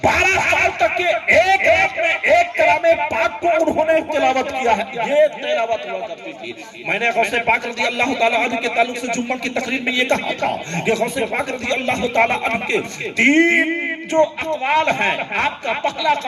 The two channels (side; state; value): both; identical; correlation 1.00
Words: کے ایک رات میں ایک کلام پاک کو انہوں نے تلاوت کیا ہے، یہ تلاوت ہوا کرتی تھی۔ میں نے غوث پاک رضی اللہ تعالیٰ عنہ کے تعلق سے جمعہ کی تقریر میں یہ کہا تھا کہ غوث پاک رضی اللہ تعالیٰ عنہ کے 3 جو اقوال ہیں، آپ کا پہلا